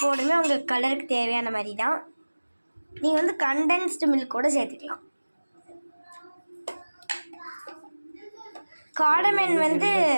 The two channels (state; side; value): inverted; both; correlation -1.00